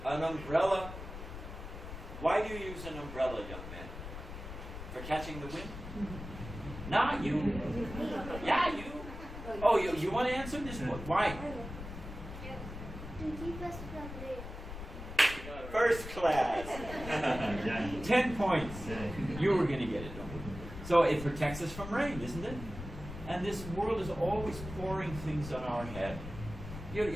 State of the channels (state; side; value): noise; left; rumble, 10 dB below the sound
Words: An umbrella. Why do you use an umbrella, young man? For catching the wind? Not you. Yeah, you. Oh, you want to answer this one? Why? To keep us from rain. First class. 10 points. You were going to get it, don't you? So it protects us from rain, isn't it? And this world is always pouring things on our head.